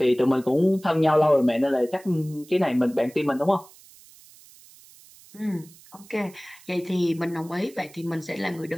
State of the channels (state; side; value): noise; right; hiss, 24 dB below the sound